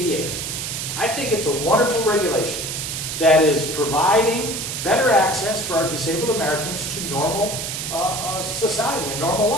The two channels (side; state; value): right; noise; hiss, 4 dB below the sound